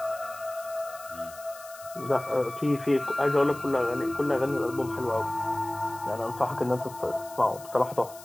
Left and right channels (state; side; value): noise; left; hiss, 18 dB below the sound